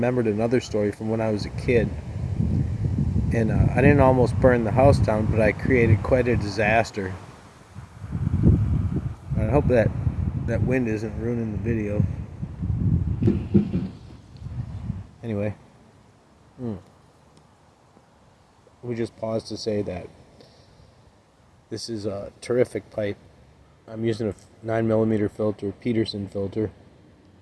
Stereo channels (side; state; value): both; identical; correlation 1.00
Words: another story from when I was a kid, and I didn't almost burn the house down, but I created quite a disaster. I hope that wind isn't ruining the video. Anyway, we just pause to say that this is a terrific pipe. I'm using a 9mm filter, Peterson filter.